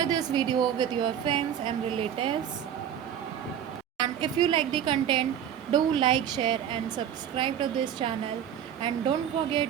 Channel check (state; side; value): quieter; left; 9.5 dB